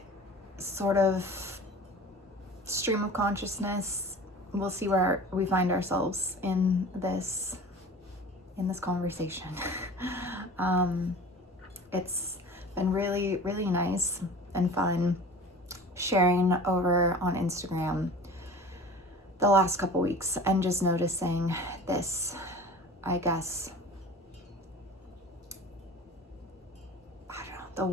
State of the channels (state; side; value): normal; both; correlation 0.40